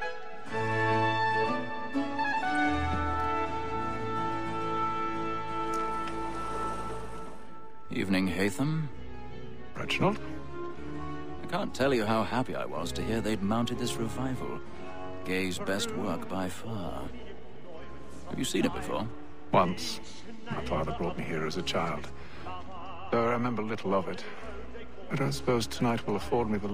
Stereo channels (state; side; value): identical; both; correlation 1.00